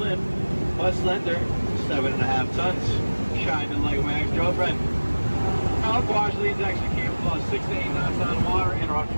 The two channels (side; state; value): both; inverted; correlation -1.00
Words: but slender 7.5 tons. Kinda like my ex-girlfriend. Now, Quash leads actually came about 6 to 8 knots on water and around